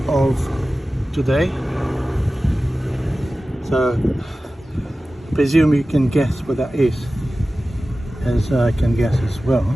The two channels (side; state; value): both; normal; correlation 0.95